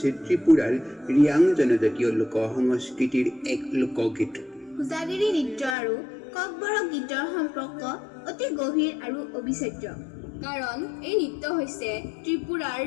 ত্ৰিপুৰাৰ ৰিয়াং জনজাতীয় লোক সংস্কৃতিৰ এক লোকগীত পূজাগিৰি নৃত্য আৰু ককবৰক গীতৰ সম্পৰ্ক অতি গভীৰ আৰু অবিচ্ছেদ্য কাৰণ এই নৃত্য হৈছে ত্ৰিপুৰাৰ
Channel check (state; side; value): drops out; right; at 5.8 s